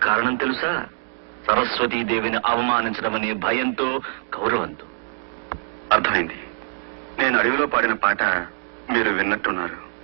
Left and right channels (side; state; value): left; silent; digital silence